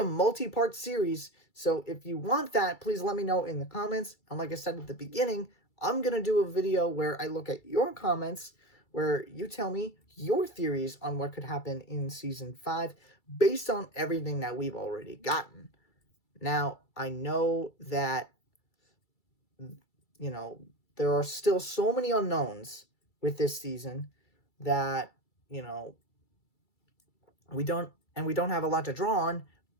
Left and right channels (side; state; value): right; late; 2.3 ms